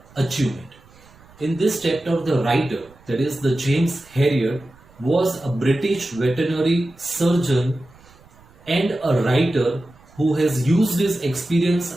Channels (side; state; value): right; noise; rumble, 27 dB below the sound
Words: achievement. In this chapter, the writer, that is the James Herriot, was a British veterinary surgeon and a writer who has used his experience